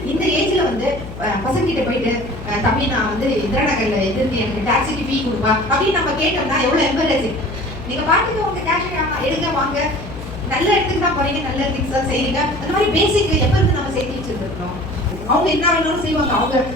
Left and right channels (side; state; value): left; noise; hum, 11 dB below the sound